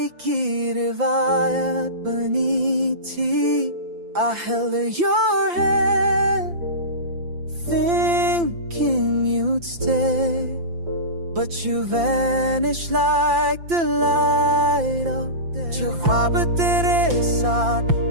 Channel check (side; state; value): left; late; 5.8 ms